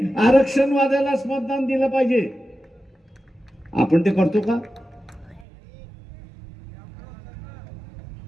मतदान दिलं पाहिजे. आपण ते करतो का?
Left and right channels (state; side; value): drops out; left; at 5.5 s